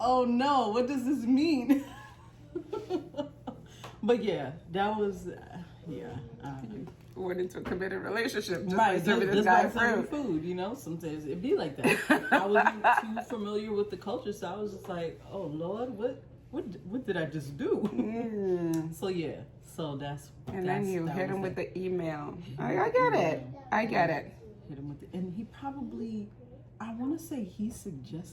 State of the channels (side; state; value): both; identical; correlation 1.00